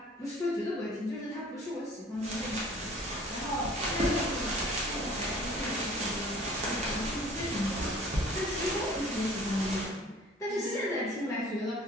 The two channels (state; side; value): normal; both; correlation 0.50